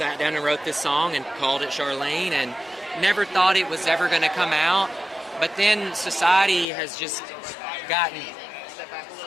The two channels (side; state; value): right; drops out; at 6.7 s